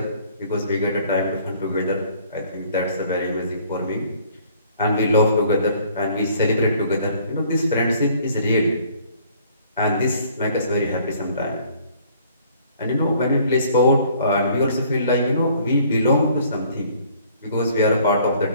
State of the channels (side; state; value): both; inverted; correlation -0.58